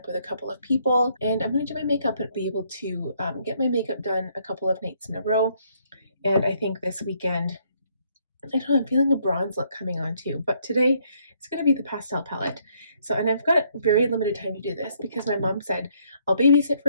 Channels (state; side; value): inverted; both; correlation -0.69